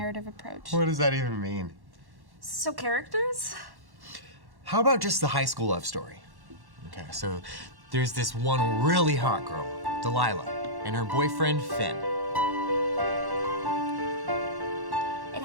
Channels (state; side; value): late; left; 1.1 ms